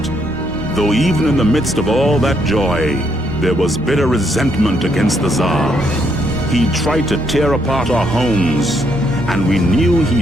Though even in the midst of all that joy, there was bitter resentment against the Tsar. He tried to tear apart our homes, and we knew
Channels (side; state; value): both; normal; correlation 0.74